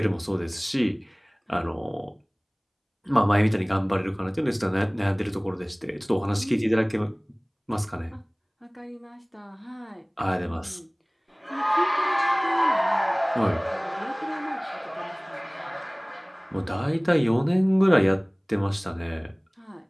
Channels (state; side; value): identical; both; correlation 1.00